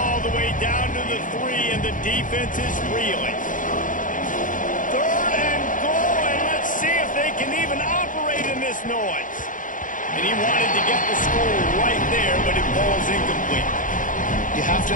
the way down to the 3, and the defense is reeling. Third and goal, and let's see if they can even operate in this noise. And he wanted to get the score right there, but it falls incomplete. You have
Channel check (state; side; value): late; right; 0.38 ms